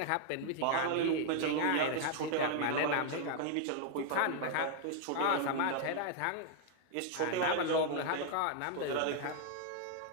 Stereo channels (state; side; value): different; both; correlation 0.00